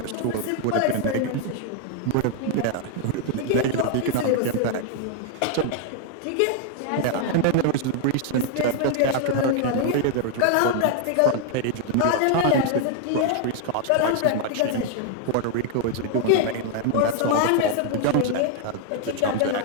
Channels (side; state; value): both; different; correlation 0.00